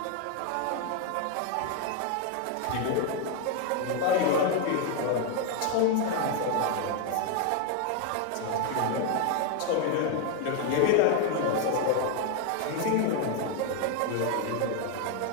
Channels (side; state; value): both; different; correlation 0.01